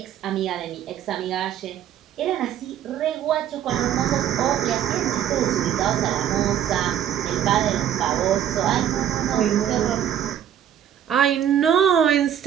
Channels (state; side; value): quieter; left; 10.2 dB